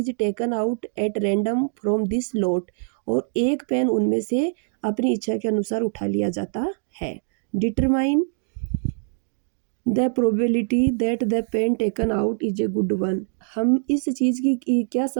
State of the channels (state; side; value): silent; left; 62 dB below the other